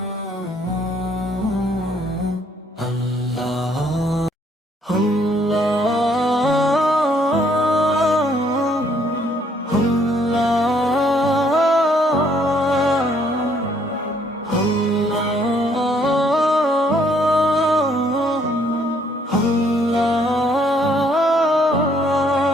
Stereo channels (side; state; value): both; normal; correlation 0.66